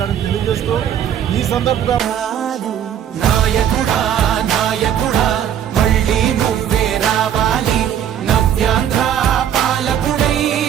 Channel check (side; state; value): left; quieter; 9.6 dB